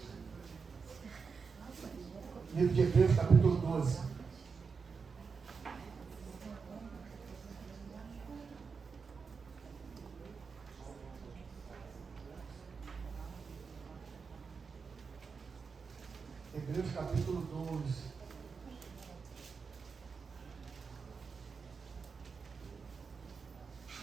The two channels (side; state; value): left; quieter; 5.3 dB